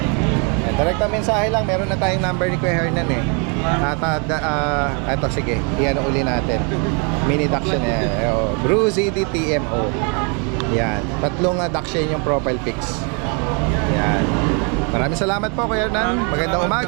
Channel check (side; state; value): left; quieter; 36.0 dB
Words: Direct mensahe lang, meron na tayong number ni Kuya Hernan eh. Ito, sige. Iyan uli natin. Mini Dachshund eh. Bruzy DTMO. Yan. 3 Dachshund yung profile pics. Yan. Maraming salamat po Kuya Hernan. Magandang